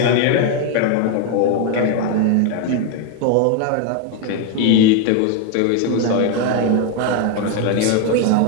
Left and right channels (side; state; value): both; different; correlation 0.01